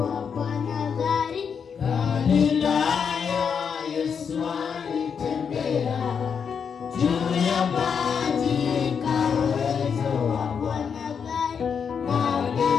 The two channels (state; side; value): quieter; right; 6.7 dB